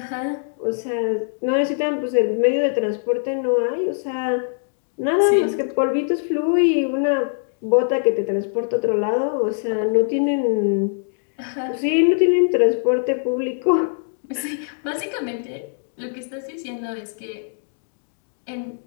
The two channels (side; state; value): right; silent; digital silence